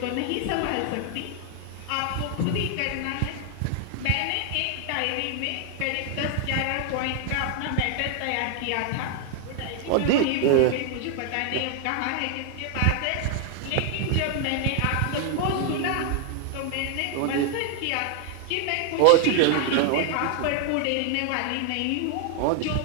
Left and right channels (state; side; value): different; both; correlation 0.00